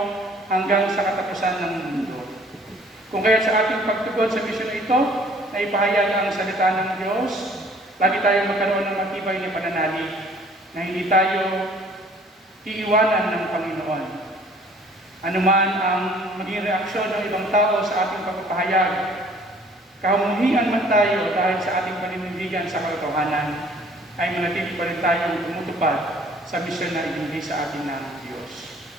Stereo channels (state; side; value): normal; both; correlation 0.55